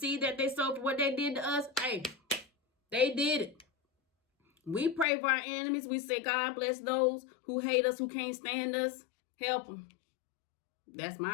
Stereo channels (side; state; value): right; drops out; at 5.1 s